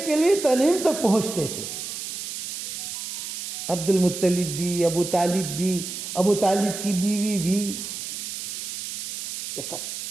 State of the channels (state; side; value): noise; right; hiss, 6 dB below the sound